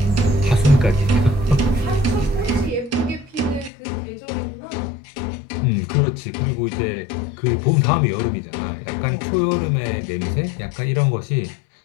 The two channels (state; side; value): drops out; right; at 3.7 s